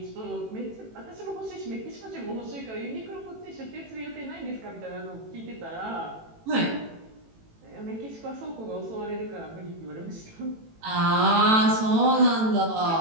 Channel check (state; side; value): late; left; 18 ms